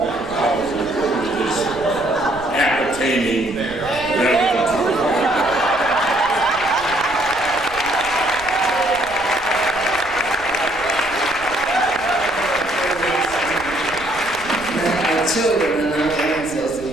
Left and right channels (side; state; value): right; noise; rumble, 19 dB below the sound